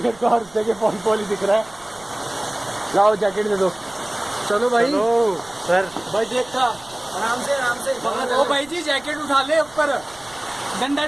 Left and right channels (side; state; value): right; noise; rumble, 23 dB below the sound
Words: मेरे को हर जगह फॉल ही दिख रहा है। लाओ जैकेट दे दो। चलो भाई। सर भाई देखा, आराम से आराम से। ओ भाई जी जैकेट उठा ले ऊपर, डंडा